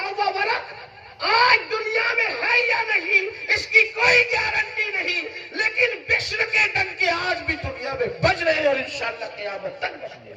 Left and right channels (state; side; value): identical; both; correlation 1.00